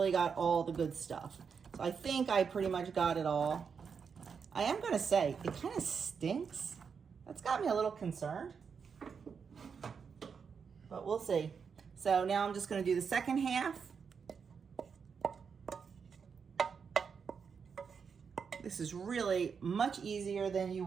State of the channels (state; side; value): quieter; left; 6.2 dB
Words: got all the good stuff. So I think I pretty much got it all. I am gonna say, it kind of stinks. That's got me a little concerned, but we'll see. So now I'm just gonna do the second half. This is really much easier than you